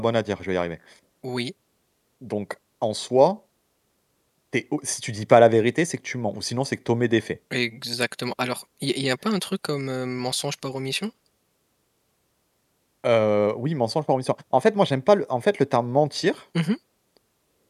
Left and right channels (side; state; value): both; identical; correlation 1.00